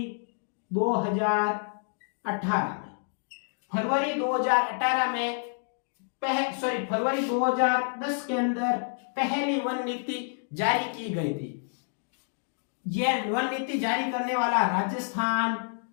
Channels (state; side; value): silent; right; digital silence